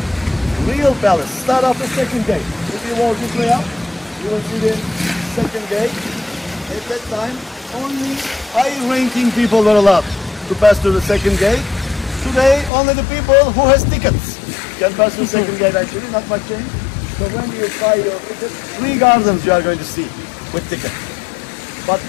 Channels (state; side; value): drops out; right; at 12.7 s